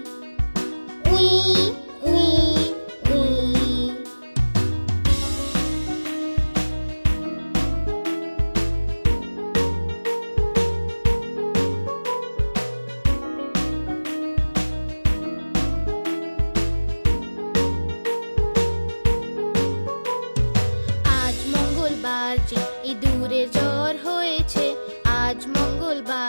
উই উই উই। আজ মঙ্গলবার যে ইঁদুরের জ্বর হয়েছে, আজ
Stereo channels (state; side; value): inverted; both; correlation -1.00